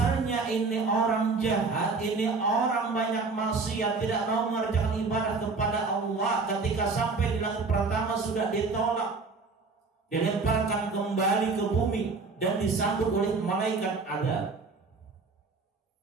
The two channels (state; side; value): quieter; left; 4.2 dB